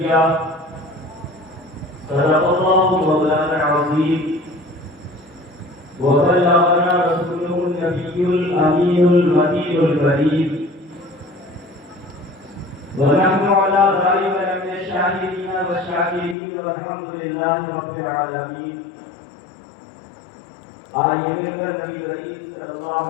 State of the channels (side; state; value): right; drops out; at 16.4 s